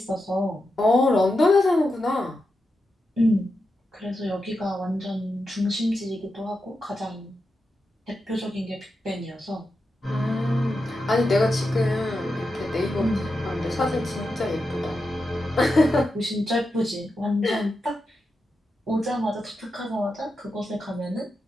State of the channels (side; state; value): both; normal; correlation 0.88